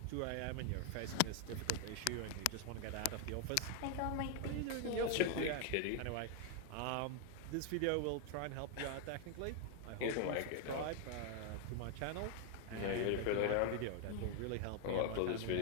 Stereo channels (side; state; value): both; different; correlation 0.00